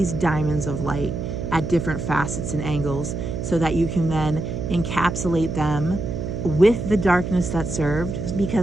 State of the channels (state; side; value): noise; right; hum, 4 dB below the sound